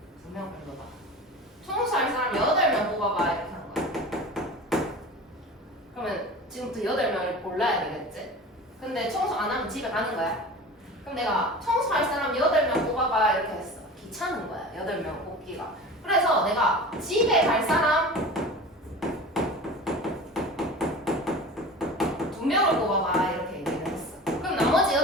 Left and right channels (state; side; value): normal; both; correlation 0.36